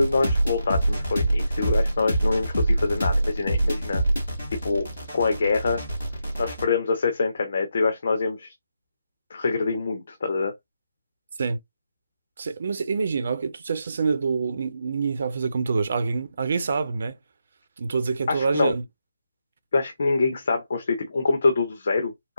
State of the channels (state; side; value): inverted; both; correlation -0.84